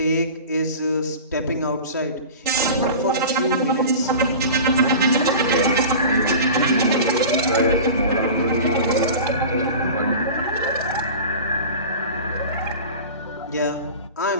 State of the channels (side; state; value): both; inverted; correlation -0.35